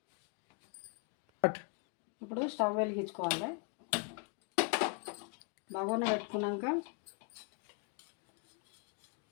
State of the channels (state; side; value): quieter; right; 36.7 dB